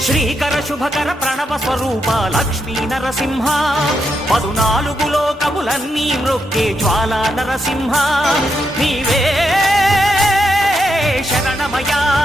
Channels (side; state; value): both; normal; correlation 0.81